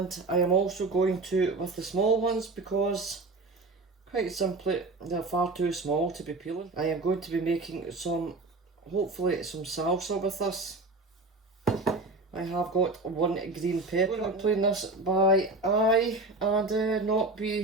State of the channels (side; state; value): left; quieter; 3.2 dB